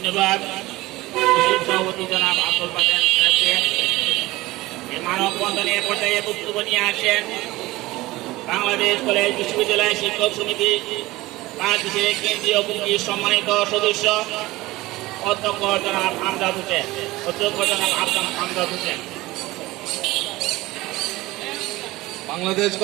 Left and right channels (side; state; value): left; quieter; 19.2 dB